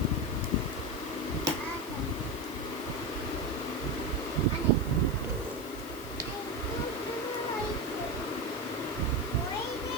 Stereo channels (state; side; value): noise; left; hiss, 15 dB below the sound